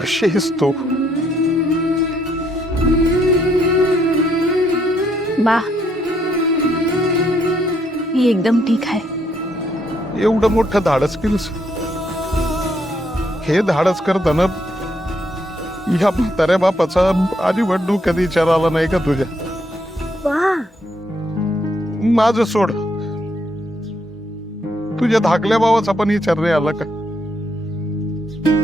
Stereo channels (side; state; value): both; normal; correlation 0.73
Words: आहेस तू? बा मी एकदम ठीक आहे. एवढं मोठं धाडस केलंस. हे धाडस करताना या म्हाताऱ्या बापाचा अजिबात कधी विचार आला नाही का तुझ्या? वा माझं सोड, तुझ्या धाकल्या भावाचा पण विचार नाही आला का?